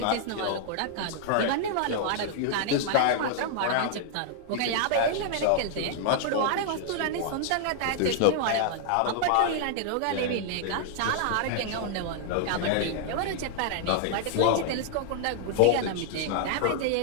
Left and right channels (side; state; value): both; different; correlation -0.01